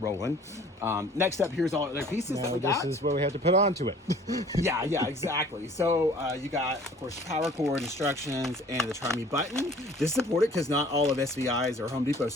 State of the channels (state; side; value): normal; both; correlation 0.51